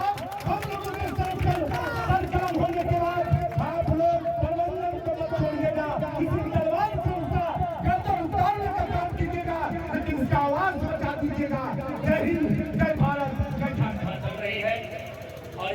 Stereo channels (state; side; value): identical; both; correlation 1.00